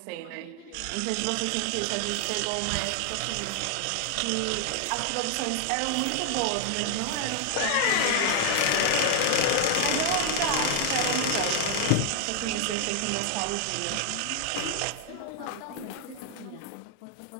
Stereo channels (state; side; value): different; both; correlation 0.00